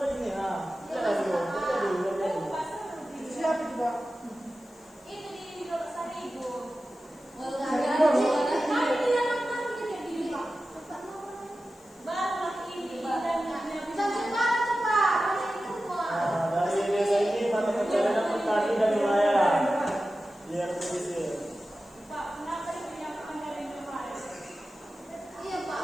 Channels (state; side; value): noise; left; hiss, 29 dB below the sound